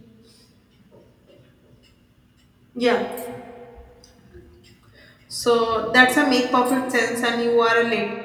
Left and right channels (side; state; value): both; identical; correlation 1.00